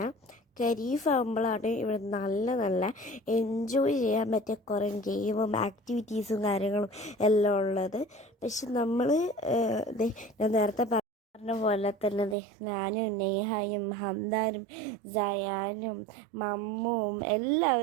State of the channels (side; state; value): left; drops out; at 12.4 s